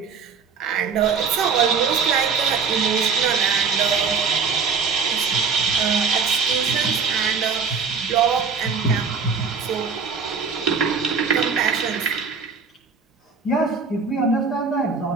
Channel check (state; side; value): quieter; left; 5.4 dB